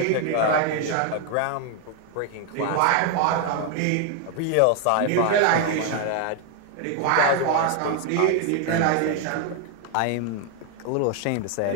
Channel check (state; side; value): different; both; correlation 0.01